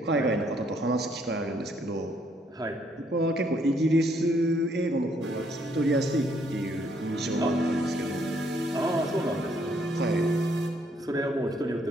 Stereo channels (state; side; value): normal; both; correlation 0.69